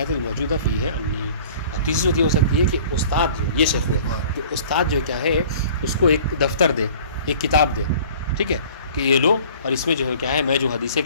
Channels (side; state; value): both; inverted; correlation -0.47